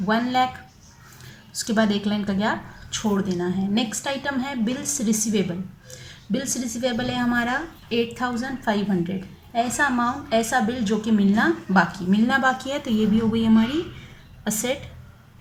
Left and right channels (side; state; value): both; identical; correlation 1.00